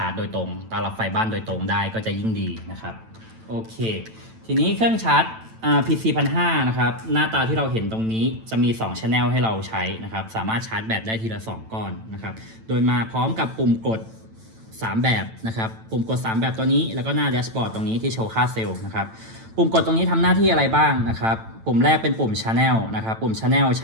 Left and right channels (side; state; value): left; late; 9.0 ms